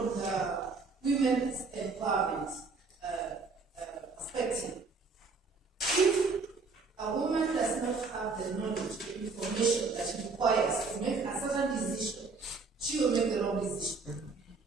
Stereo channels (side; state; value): left; quieter; 4.3 dB